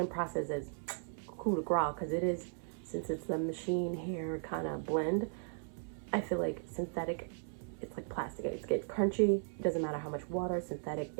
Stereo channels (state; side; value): silent; left; 53 dB below the other